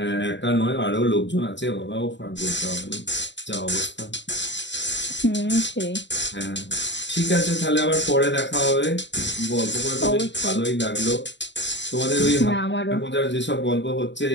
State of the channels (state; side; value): late; right; 0.52 ms